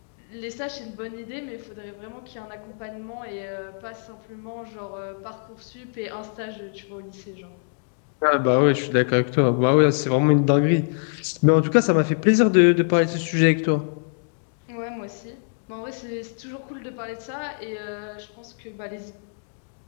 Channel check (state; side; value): silent; right; digital silence